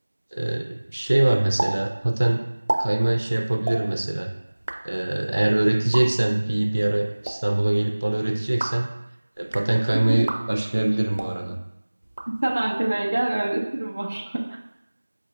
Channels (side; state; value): both; inverted; correlation -1.00